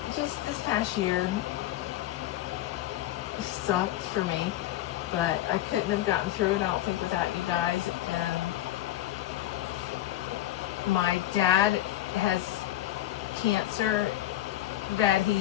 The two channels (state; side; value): quieter; right; 14.2 dB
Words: just this past year sucked for me, but I couldn't have gotten through it, I don't think, without you guys. And my dad has cancer that